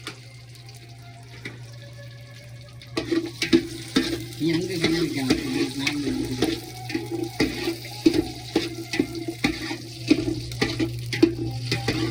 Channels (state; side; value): identical; both; correlation 1.00